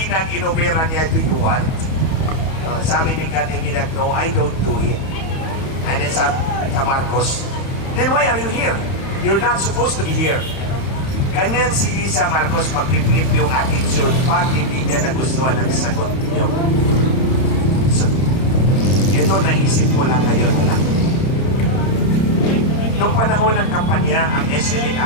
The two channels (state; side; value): late; right; 31 ms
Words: inoperan niya, do you want? Sabi ni Kati Binag, no, I don't do it. And then sa Marcos, then why are you here? You're not supposed to be here. Ganyan si Lisa Marcos magpiplit yung attitude pag hindi niya nagustuhan ang sagot niyo. So, ito naisip ko lang ngayon na lang. Noong panahon ng kampanya, ang